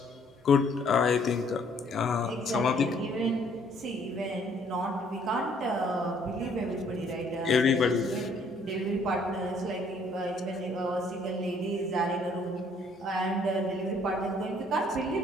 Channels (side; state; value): both; normal; correlation 0.63